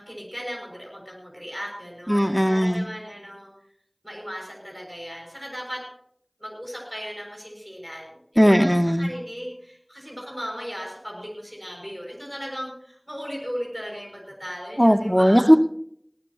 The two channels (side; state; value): both; identical; correlation 1.00